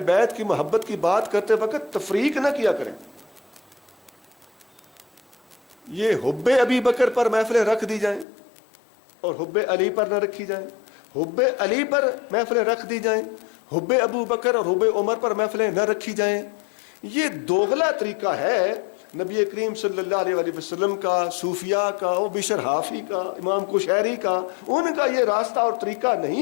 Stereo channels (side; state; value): right; drops out; at 8.2 s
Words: بیت کی محبت کی بات کرتے وقت تفریق نہ کیا کریں. یہ حب ابی بکر پر محفلیں رکھ دی جائیں اور حب علی پر نہ رکھی جائیں، حب علی پر محفلیں رکھ دی جائیں، حب ابو بکر اور حب عمر پر محفلیں نہ رکھی جائیں، یہ دوغلا طریقہ ہے نبی کریم صلی اللہ علیہ وآلہ وسلم کا، صوفیاء کا، وہ بشر حافی کا، امام کشیری کا، ان کا یہ راستہ اور طریقہ